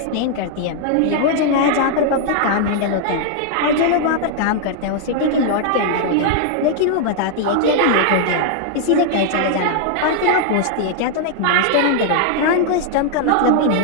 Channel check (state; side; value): different; both; correlation -0.01